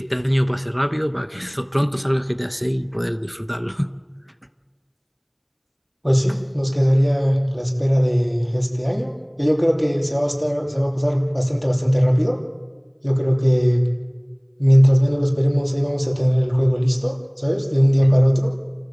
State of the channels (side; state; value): both; identical; correlation 1.00